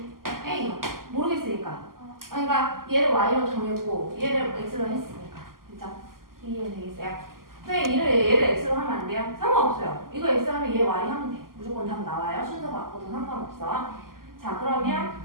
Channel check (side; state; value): left; late; 0.92 ms